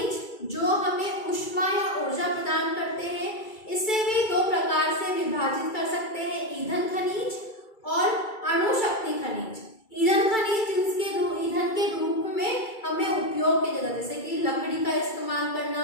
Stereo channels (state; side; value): late; right; 2.3 ms